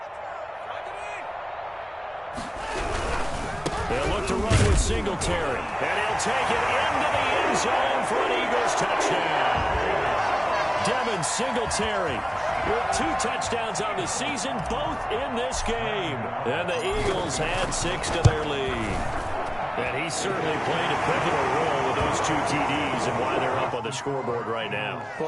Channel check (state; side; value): identical; both; correlation 1.00